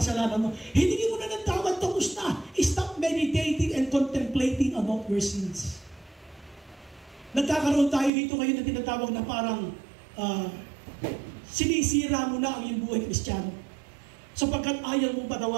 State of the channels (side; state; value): left; drops out; at 8.1 s